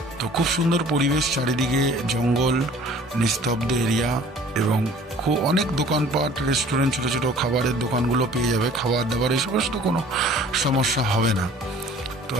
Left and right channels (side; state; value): both; normal; correlation 0.50